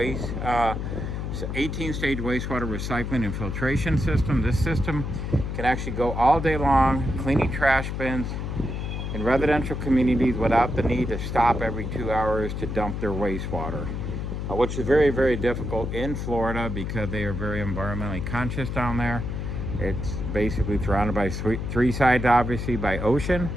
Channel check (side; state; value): left; noise; hum, 4 dB below the sound